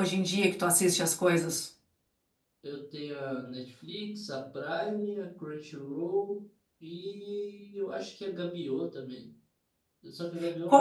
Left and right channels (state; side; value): identical; both; correlation 1.00